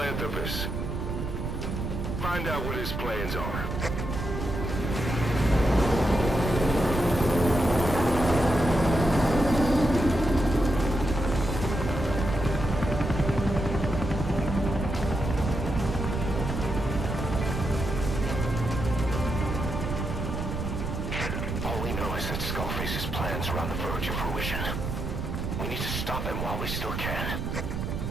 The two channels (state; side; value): noise; right; rumble, 3 dB below the sound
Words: Find out what his plans are. Stop him while we still can.